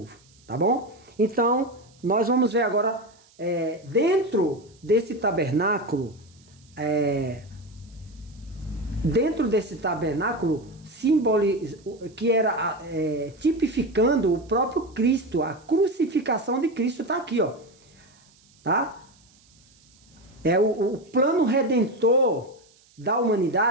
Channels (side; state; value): right; noise; hiss, 30 dB below the sound